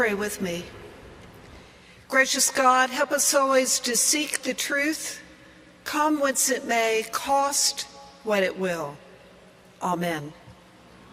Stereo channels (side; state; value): both; identical; correlation 1.00